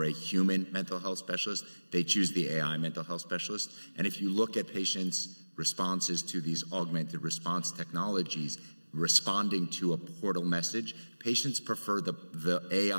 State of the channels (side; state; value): both; inverted; correlation -1.00